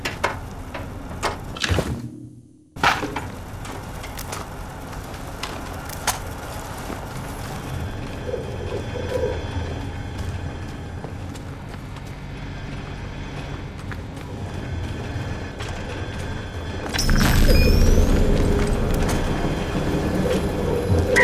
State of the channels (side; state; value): both; identical; correlation 1.00